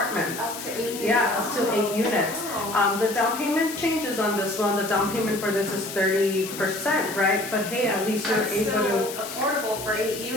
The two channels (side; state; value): left; noise; hiss, 10 dB below the sound